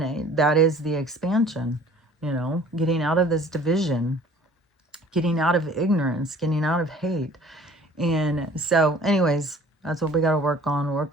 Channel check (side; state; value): both; normal; correlation 0.51